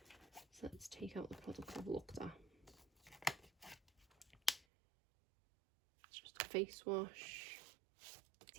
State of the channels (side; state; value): left; drops out; at 4.7 s